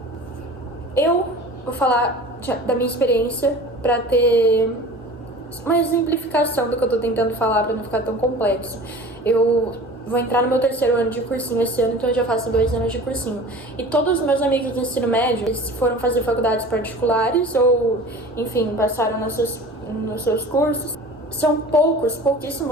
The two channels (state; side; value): normal; both; correlation 0.40